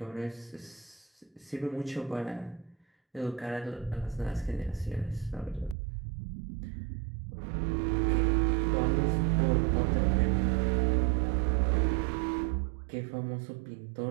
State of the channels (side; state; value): left; drops out; at 5.8 s